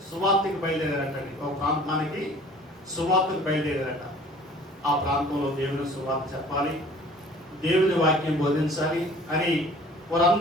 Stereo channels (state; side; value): normal; both; correlation 0.49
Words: సువార్తకి బయలుదేరారటండి. ఒక ప్రాంతానికి సువార్తకు బయలుదేరారట. ఆ ప్రాంతంలో దేవుని సువార్త చెప్పాలి, దేవుని వాక్యం బోధించాలి అని